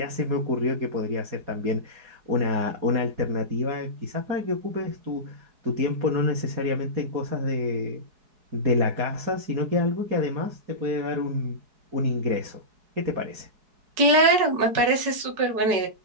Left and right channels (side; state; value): left; late; 4.7 ms